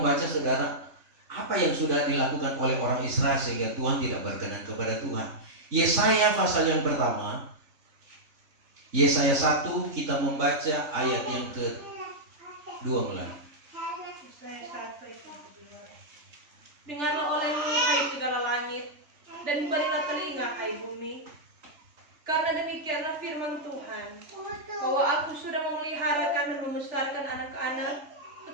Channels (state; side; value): late; left; 3.3 ms